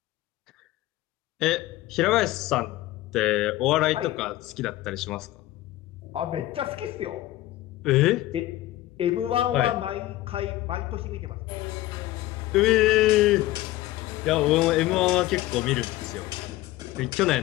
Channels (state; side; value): quieter; right; 16.3 dB